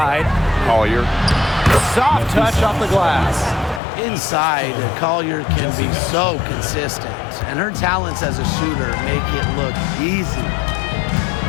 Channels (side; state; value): right; drops out; at 3.8 s